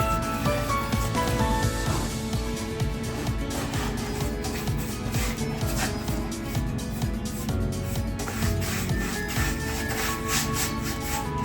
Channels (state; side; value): identical; both; correlation 1.00